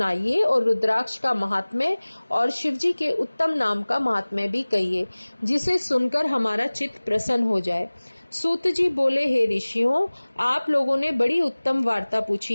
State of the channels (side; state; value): both; inverted; correlation -1.00